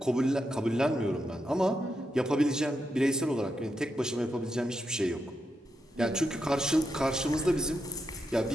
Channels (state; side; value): normal; both; correlation 0.85